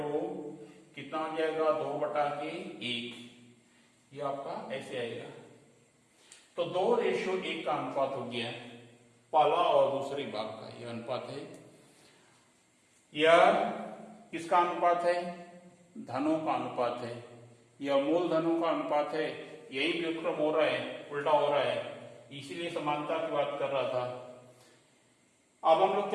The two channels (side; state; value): both; identical; correlation 1.00